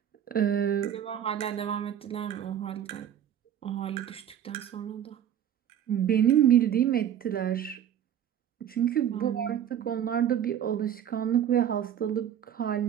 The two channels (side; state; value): left; quieter; 9.9 dB